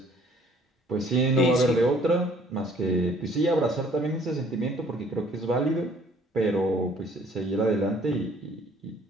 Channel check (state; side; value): normal; both; correlation 0.58